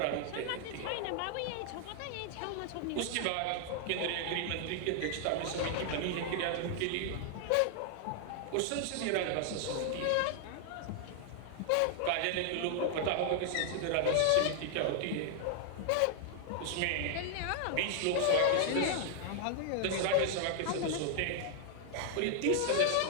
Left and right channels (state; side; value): different; both; correlation 0.00